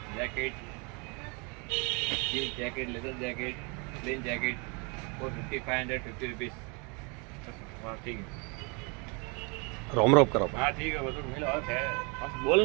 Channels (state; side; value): quieter; left; 32.1 dB